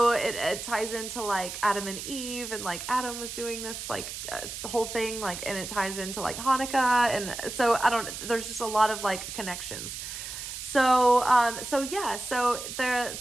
it ties into like Adam and Eve, and like Adam was doing this like the whole thing, like, and it ties into like Hanukkah. And so there's just a lot of like connections. So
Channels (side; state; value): right; noise; hiss, 8 dB below the sound